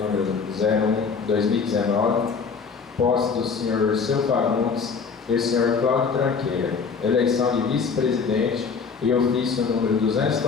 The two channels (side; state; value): right; quieter; 5.4 dB